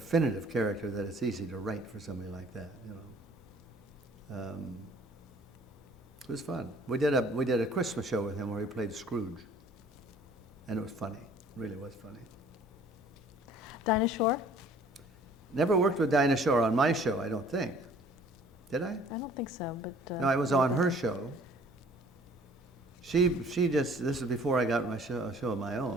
character that it's easy to write for somebody like that. You know, it was fun. We did a Christmas show with him where he played Scrooge, and it was funny. It really was funny. Dinah Shore. Never worked with Dinah Shore on my show, I don't think. Did I? I don't think so, but. No, I was on her show. She just, this was before I got a show of my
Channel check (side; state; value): both; normal; correlation 0.53